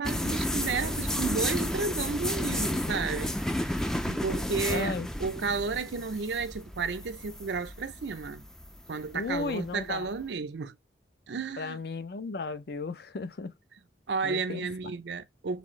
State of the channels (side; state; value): both; normal; correlation 0.40